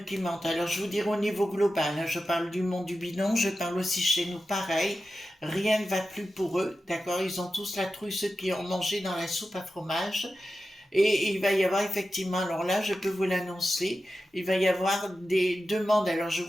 qui mentent, alors je vous dirais au niveau global, hein, je parle du monde du bidon, je parle aussi chez nous, pareil, rien ne va plus pour eux, d'accord? Ils ont tous la trouille, ceux qui ont mangé dans la soupe à fromage. Et il va y avoir effectivement, alors là, je peux vous l'annoncer, il va y avoir des demandes. Alors, je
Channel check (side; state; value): both; normal; correlation 0.92